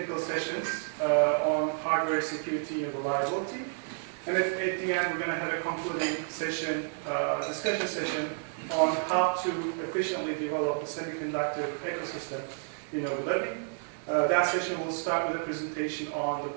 sessions on hardware security and reliability. And at the end, we're going to have a concluding session, discussion session on how to efficiently develop a semiconductor ecosystem in Abu Dhabi. That session will start with a presentation on the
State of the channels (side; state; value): left; silent; digital silence